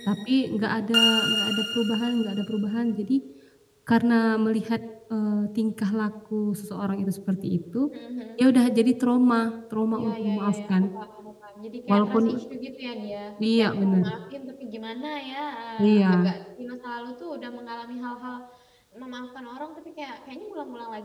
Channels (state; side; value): identical; both; correlation 1.00